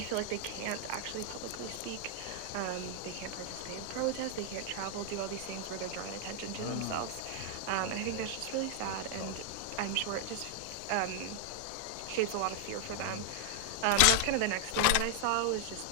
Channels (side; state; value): both; different; correlation 0.00